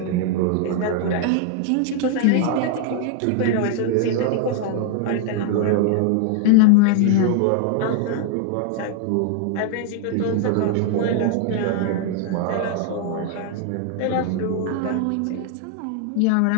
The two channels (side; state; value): both; different; correlation 0.00